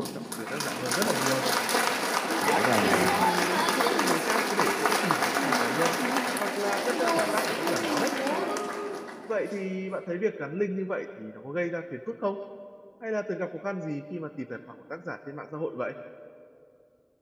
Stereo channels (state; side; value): identical; both; correlation 1.00